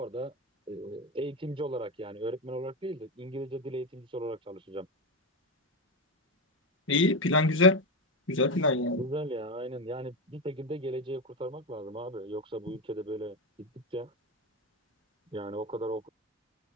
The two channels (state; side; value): normal; both; correlation 0.15